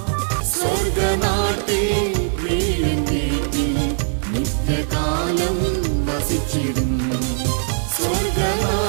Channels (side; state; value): left; silent; 65 dB below the other